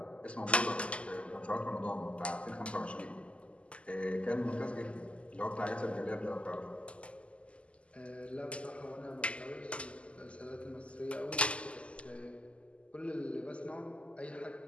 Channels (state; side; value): late; right; 0.057 ms